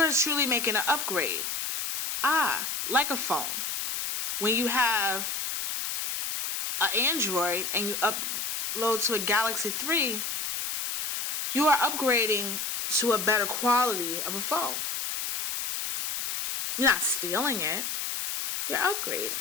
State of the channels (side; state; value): left; noise; hiss, 3 dB below the sound